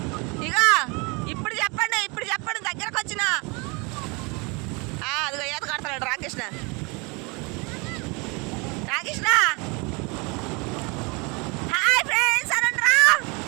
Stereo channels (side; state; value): left; quieter; 29.2 dB